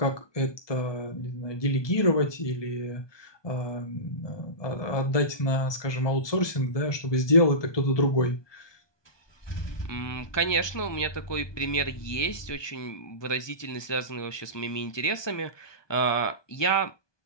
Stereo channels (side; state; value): right; late; 1.2 ms